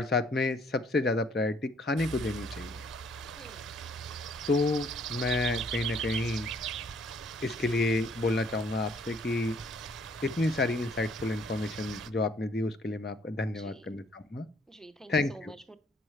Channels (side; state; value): both; normal; correlation 0.62